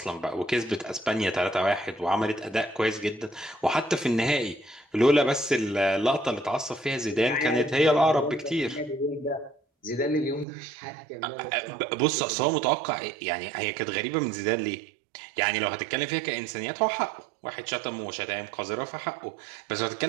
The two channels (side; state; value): left; drops out; at 10.5 s